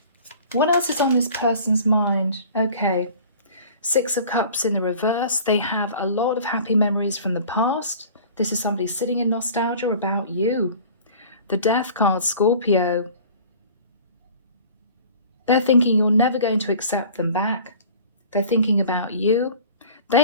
What else is on this person's mind? Okay, Six of Cups in the reverse. They have a lot of happy memories from the past. This is somebody sitting in nostalgia about you. The Death card, Scorpio. They're thinking you're never going to accept them back. They're thinking about you.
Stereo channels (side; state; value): both; inverted; correlation -0.45